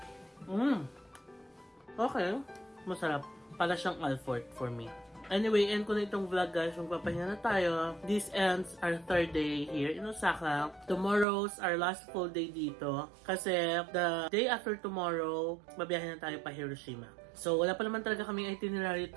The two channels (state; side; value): drops out; left; at 11.2 s